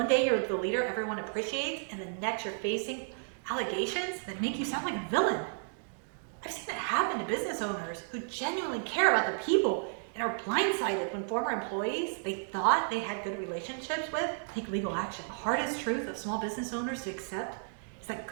day you're the leader everyone appreciates, and the next you're facing allegations that make you sound like a villain. I've seen it happen to business owners who genuinely care about their people and are blindsided when former employees they thought they had good relationships with take legal action. The hardest truth of small business owners to accept is that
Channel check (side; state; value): left; silent; digital silence